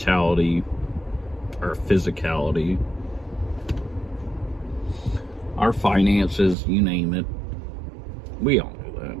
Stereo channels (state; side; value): drops out; left; at 6.6 s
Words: our physicality, our finances, you name it. We all know